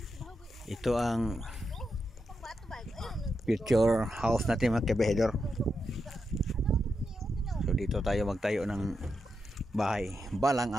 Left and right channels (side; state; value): both; normal; correlation 0.86